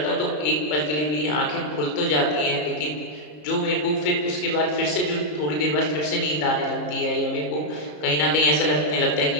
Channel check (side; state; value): right; late; 33 ms